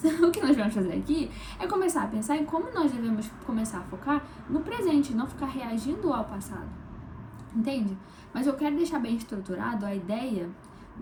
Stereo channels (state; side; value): identical; both; correlation 1.00